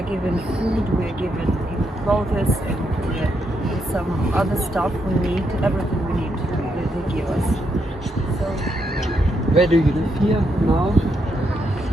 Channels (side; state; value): both; normal; correlation 0.79